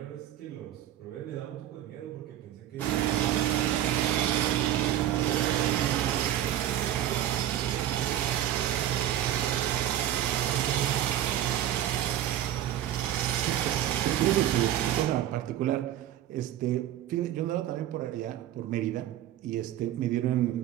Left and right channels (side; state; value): left; quieter; 12.1 dB